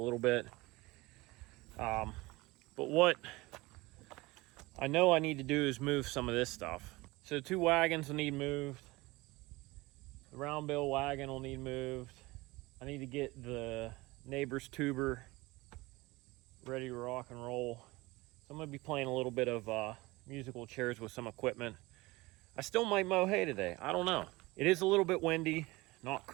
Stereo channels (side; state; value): left; quieter; 21.7 dB